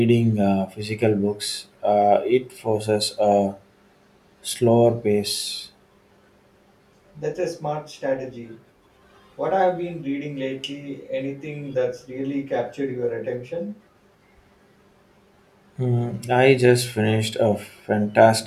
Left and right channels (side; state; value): both; identical; correlation 1.00